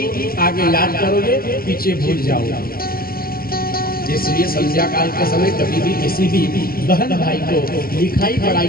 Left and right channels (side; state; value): right; late; 0.43 ms